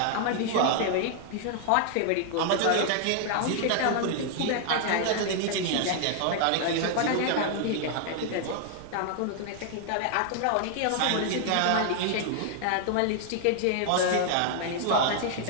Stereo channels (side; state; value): both; different; correlation 0.00